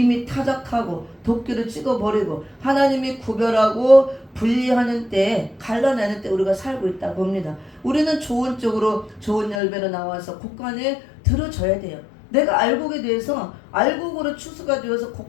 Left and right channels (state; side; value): drops out; right; at 9.6 s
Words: 타작하고 도끼를 찍어버리고 하나님이 구별하고 분리하는 때, 갈라내는 때 우리가 살고 있다고 봅니다. 우리는 좋은 쪽으로 좋은 열매로 나와서 곡간에 들어져야 돼요. 내가 알곡에 대해서 알곡으로 추수가 되어서